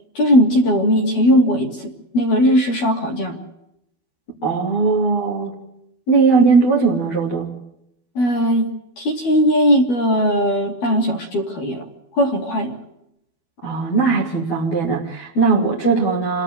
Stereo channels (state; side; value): late; right; 12 ms